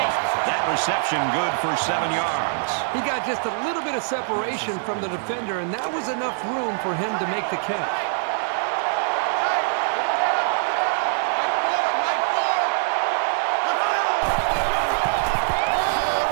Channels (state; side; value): silent; left; digital silence